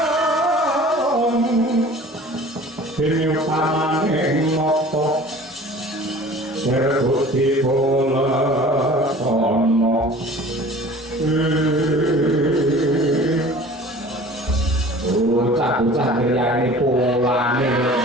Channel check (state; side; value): normal; both; correlation 0.45